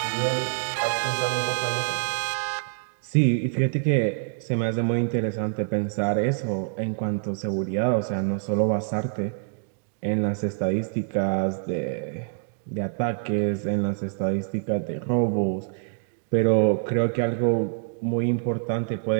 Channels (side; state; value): left; silent; 61 dB below the other